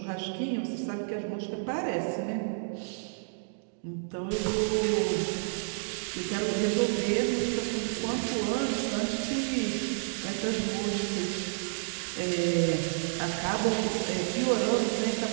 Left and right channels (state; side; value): silent; left; digital silence